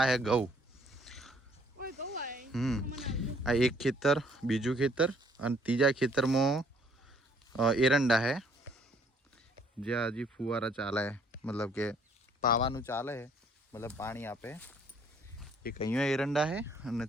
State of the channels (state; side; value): normal; both; correlation 0.63